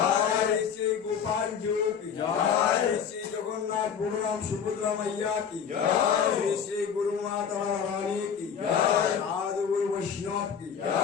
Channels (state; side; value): quieter; right; 7.5 dB